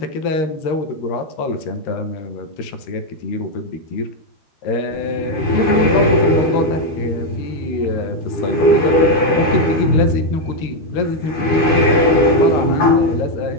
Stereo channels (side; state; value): right; late; 13 ms